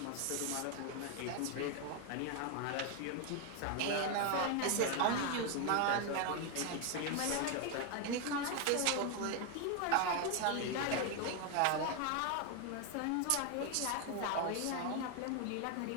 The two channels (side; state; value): both; different; correlation 0.01